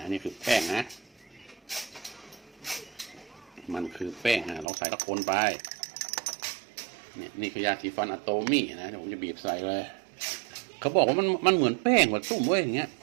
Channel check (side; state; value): left; drops out; at 4.7 s